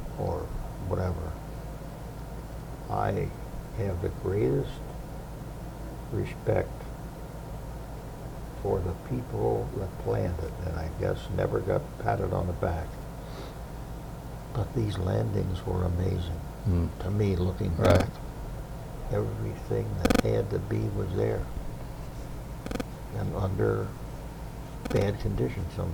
or whatever. I have the greatest respect for the people that planned it, and I guess never got patted on the back. But these landings were amazing. To me, looking back. Everything that had to be was there. and under bad conditions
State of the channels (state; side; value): identical; both; correlation 1.00